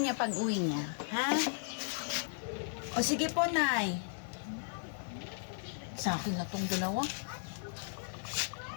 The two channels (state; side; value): silent; right; 54 dB below the other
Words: niya pag uwi niya. Ha? O, sige po, Nay. Sa akin na tong dalawa.